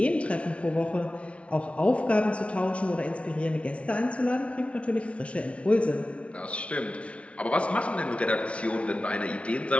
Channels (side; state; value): right; late; 0.062 ms